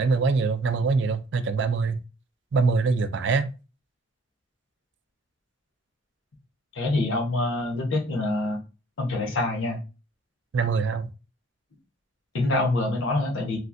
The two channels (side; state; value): both; normal; correlation 0.57